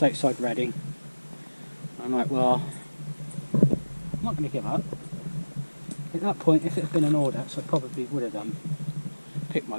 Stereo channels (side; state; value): both; inverted; correlation -1.00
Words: outside Reading. I'm like, well, I'm not going to give up. At that point, if it had been an Audax, I probably would have picked my